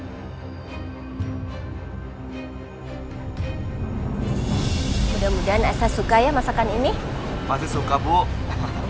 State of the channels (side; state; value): both; identical; correlation 1.00